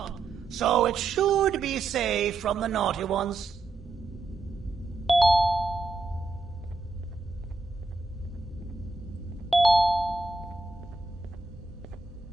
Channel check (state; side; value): quieter; left; 3.5 dB